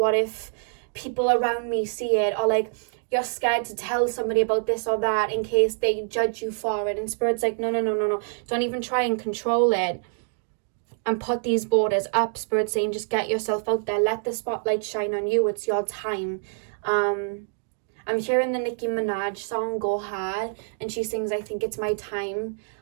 if people around me see it? Or like, you're scared to tell somebody about this or that in case they judge you for it. And Spirit's like, no. Don't even try and control it. And put these borders up. Spirit's saying, just get yourself out there. Let the spotlight shine on you. It's your time. I'm hearing the Nicki Minaj song, Go Hard. And she sings, I think it's my time.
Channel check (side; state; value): left; silent; digital silence